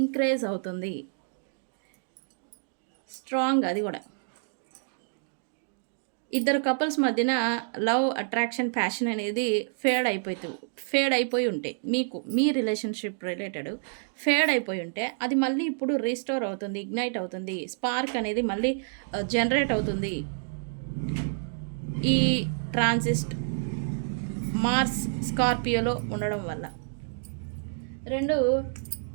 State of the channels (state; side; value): silent; left; digital silence